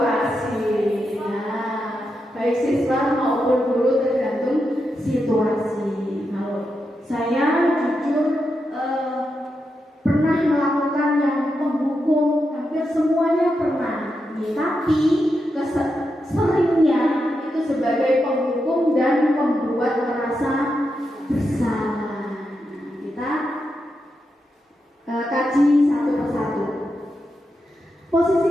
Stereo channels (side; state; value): both; normal; correlation 0.86